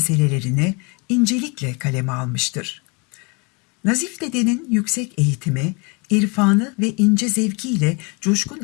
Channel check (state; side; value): quieter; right; 30.6 dB